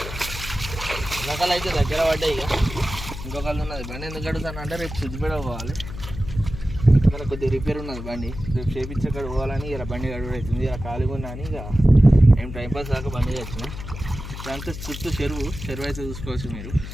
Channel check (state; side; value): noise; left; hum, 9 dB below the sound